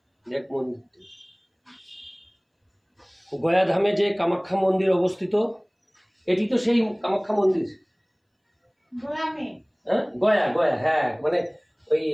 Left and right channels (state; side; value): identical; both; correlation 1.00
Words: দেখ মন্দিরটা। গয়া ধামে যে কামাখ্যা মন্দির অবস্থিত, এটি তো সেই কামাখ্যা মন্দির। হ্যাঁ, গয়া গয়া, হ্যাঁ, মানে ওই